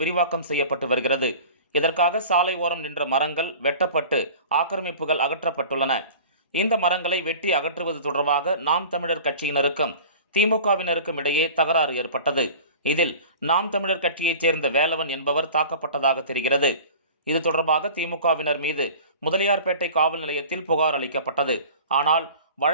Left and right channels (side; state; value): both; inverted; correlation -0.41